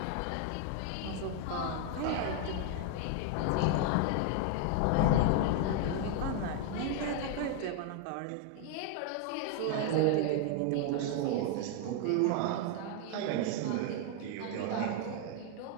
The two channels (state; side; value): different; both; correlation 0.00